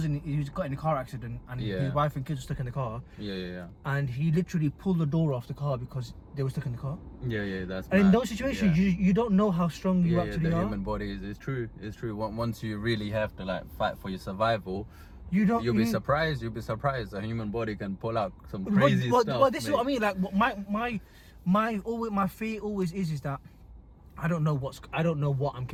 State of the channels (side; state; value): both; identical; correlation 1.00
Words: he got in a car accident and his wife and kids were stuck in the car. Yeah. And he literally pulled the door off the car because they were stuck in the car. Yeah, that's bad. And in those situations, you don't know how strong you actually are. The human body is true. It's true. Once you really have to like fight for your survival, you'll be surprised. You'll be surprised. The human body can pull out some crazy stuff. Well, this is what I mean. Like my fear always is that I don't know what I'm